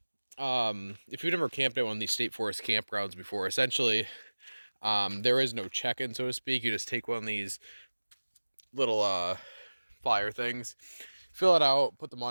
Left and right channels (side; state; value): both; inverted; correlation -1.00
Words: if you've never camped at one of these state forest campgrounds before, essentially there is no check-in, so to speak. You just take one of these little flyer things, fill it out, put the